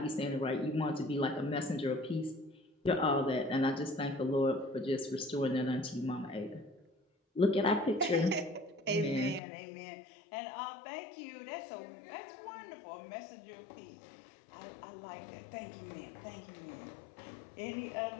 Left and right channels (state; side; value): drops out; right; at 9.4 s